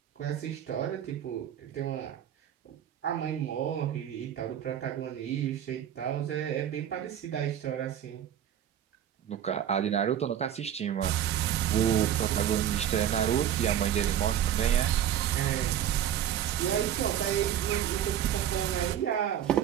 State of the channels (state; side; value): quieter; left; 10.3 dB